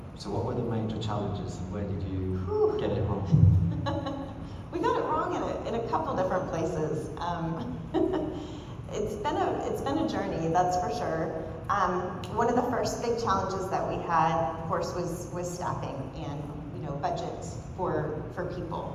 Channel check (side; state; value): both; identical; correlation 1.00